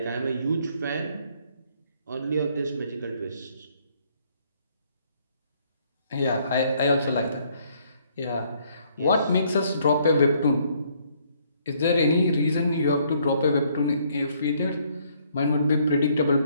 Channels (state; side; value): inverted; both; correlation -0.67